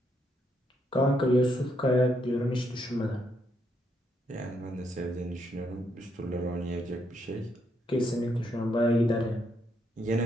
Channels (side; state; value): both; normal; correlation 0.76